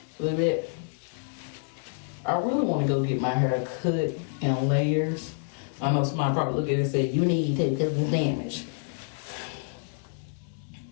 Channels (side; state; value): right; silent; 59 dB below the other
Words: Baby, I really want to go get my hair cut in layers. I know somebody probably look at it and say, you need to because it's damaged.